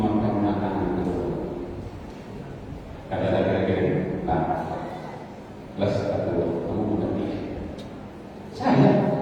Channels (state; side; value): identical; both; correlation 1.00